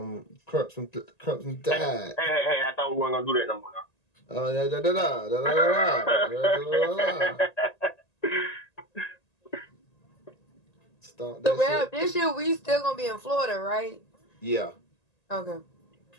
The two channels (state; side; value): late; right; 1.9 ms